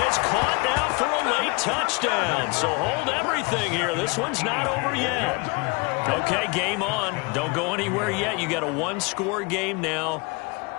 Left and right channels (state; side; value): quieter; right; 29.0 dB